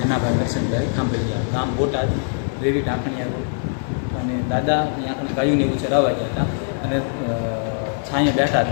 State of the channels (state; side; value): silent; right; digital silence